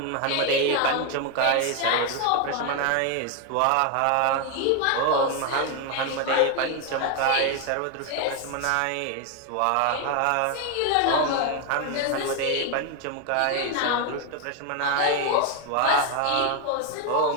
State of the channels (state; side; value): different; both; correlation 0.01